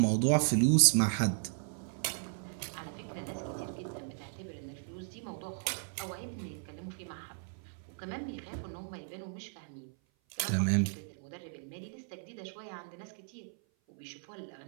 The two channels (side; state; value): left; silent; 54 dB below the other